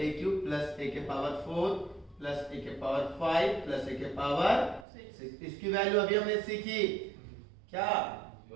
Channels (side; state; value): left; drops out; at 4.9 s